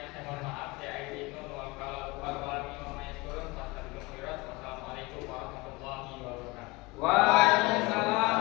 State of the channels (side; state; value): right; quieter; 23.4 dB